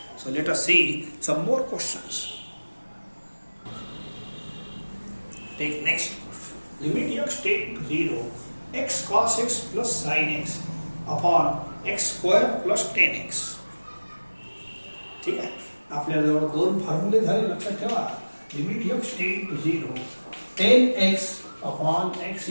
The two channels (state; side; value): inverted; both; correlation -1.00